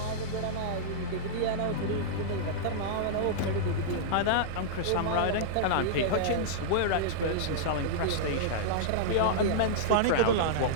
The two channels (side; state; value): both; different; correlation -0.03